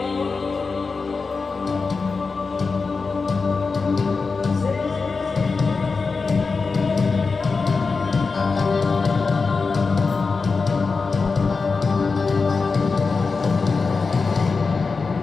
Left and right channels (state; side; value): quieter; right; 4.5 dB